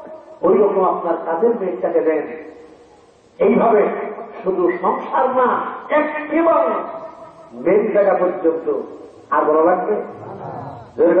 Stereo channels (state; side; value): identical; both; correlation 1.00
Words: ওই রকম আপনার কাজের মেয়েটাকে দেন। এইভাবে শুধু সংসার না, একেবারে মেন জায়গা পর্যন্ত। আর ভালো লাগবে?